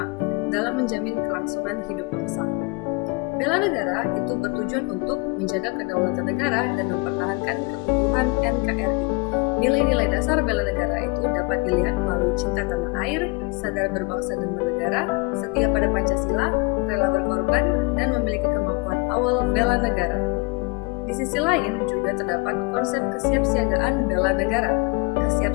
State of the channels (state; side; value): quieter; right; 27.7 dB